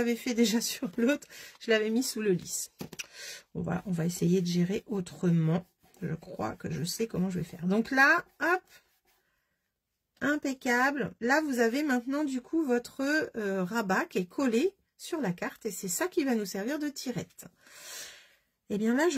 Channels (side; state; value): both; identical; correlation 1.00